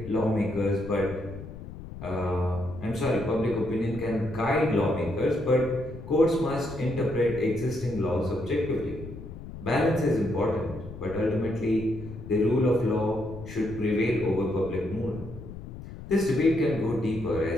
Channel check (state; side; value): noise; left; rumble, 13 dB below the sound